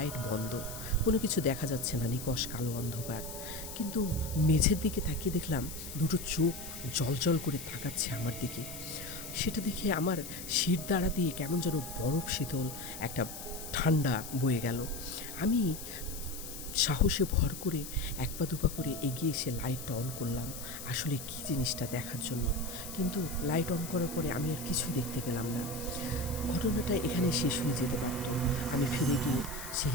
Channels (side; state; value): left; noise; hiss, 10 dB below the sound